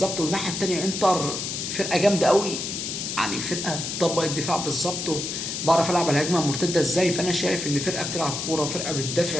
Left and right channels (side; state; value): left; noise; hiss, 4 dB below the sound